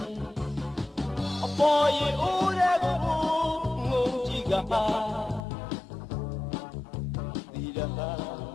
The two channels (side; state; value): right; drops out; at 5.4 s